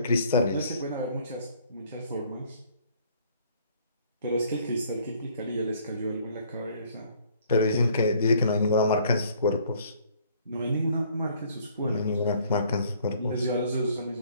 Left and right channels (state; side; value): inverted; both; correlation -0.60